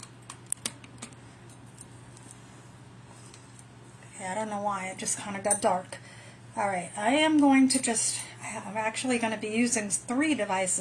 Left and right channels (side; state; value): both; identical; correlation 1.00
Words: I don't know why it just kind of got dark. Alright, I am going to I'm actually going to be using 3